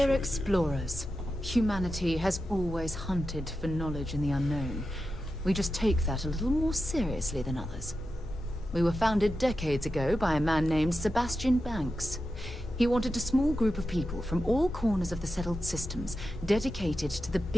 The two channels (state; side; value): normal; both; correlation 0.90